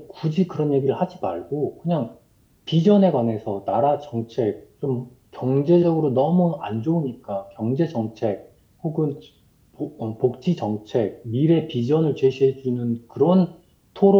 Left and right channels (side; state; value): both; identical; correlation 1.00